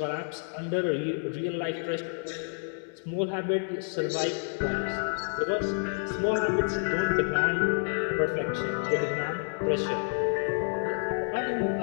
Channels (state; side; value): silent; right; 58 dB below the other